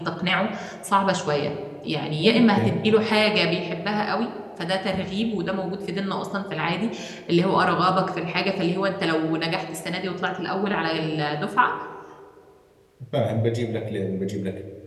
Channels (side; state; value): both; identical; correlation 1.00